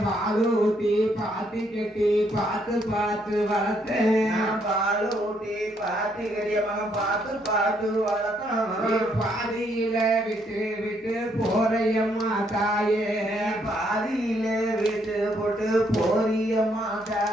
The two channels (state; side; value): normal; both; correlation 0.72